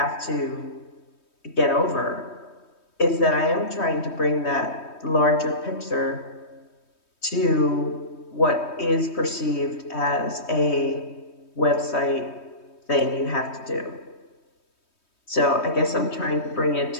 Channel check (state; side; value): late; right; 3.2 ms